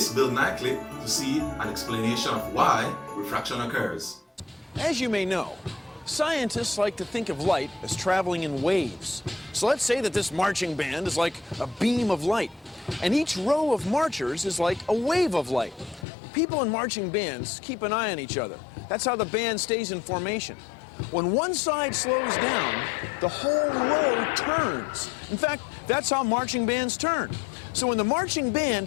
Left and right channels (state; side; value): drops out; right; at 16.1 s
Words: Bill Nye clip to see an explanation of why refraction occurs. As you may know, scientists like to think of light as traveling in waves. So let's say that this marching band is like a beam of light, and each row of marchers is like a wave of light. People in marching bands keep an eye on each other. That's how the band stays in formation. When one side slows down, the whole row turns. In fact, that's how marching bands turn. So when the marching